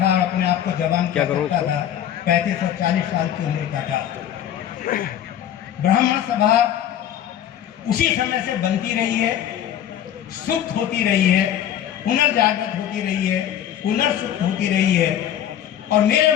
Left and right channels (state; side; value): quieter; right; 10.5 dB